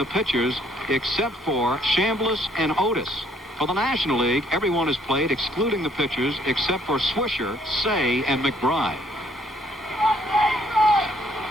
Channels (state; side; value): normal; both; correlation 0.65